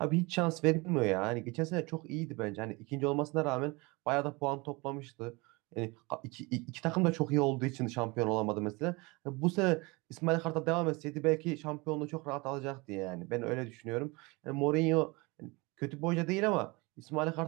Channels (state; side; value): quieter; left; 25.7 dB